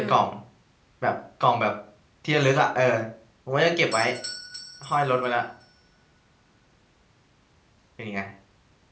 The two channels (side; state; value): both; identical; correlation 1.00